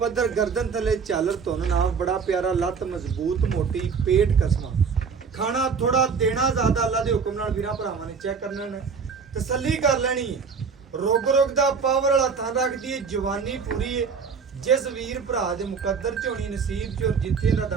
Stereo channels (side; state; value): left; quieter; 5.7 dB